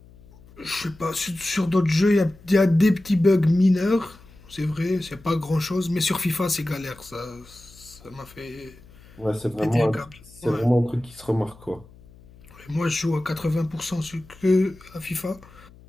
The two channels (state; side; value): noise; left; hum, 23 dB below the sound